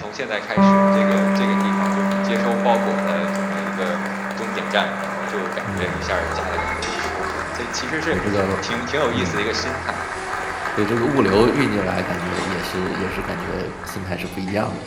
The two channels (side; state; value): both; identical; correlation 1.00